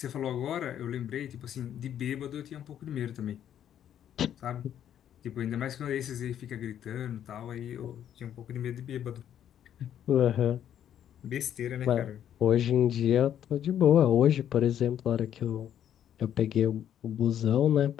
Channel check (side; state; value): right; quieter; 10.2 dB